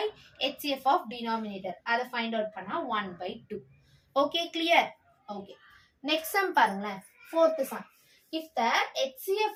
HCF of denominator. அதை ஃபைண்ட் அவுட் பண்ணா 1/2. Okay, clear? Okay, next sum பாருங்களேன். Fourth sum. If the HCF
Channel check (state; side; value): identical; both; correlation 1.00